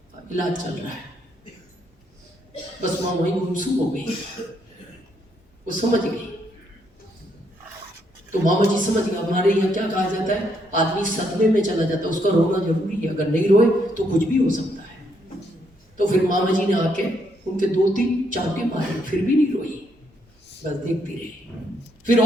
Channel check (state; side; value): normal; both; correlation 0.74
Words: इलाज चल रहा है। बस माँ वहीं गुमसुम हो गई, वो समझ गई। तो मामा जी समझ गए। हमारे यहाँ क्या कहा जाता है, आदमी सदमे में चला जाता है, उसका रोना जरूरी है, अगर नहीं रोए तो कुछ भी हो सकता है। तो फिर मामा जी ने आके उनके 2-3 चाबुके मारे, फिर भी नहीं रोई, बस देखती रही। फिर